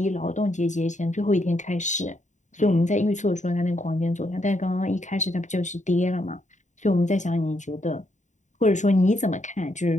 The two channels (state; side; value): late; right; 0.35 ms